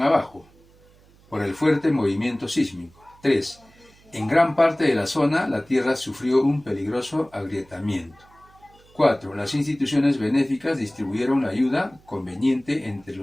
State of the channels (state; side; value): noise; right; hum, 28 dB below the sound